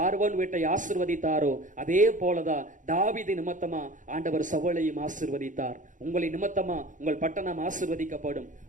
வீட்டை ஆசீர்வதித்தாரோ அதே போலதான் தாவீது நிமித்தமா ஆண்டவர் சவுலையும் ஆசீர்வதித்தார். உங்களை நிமித்தமா உங்கள் பட்டணம் ஆசீர்வதிக்கப்படும்,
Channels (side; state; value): left; late; 0.37 ms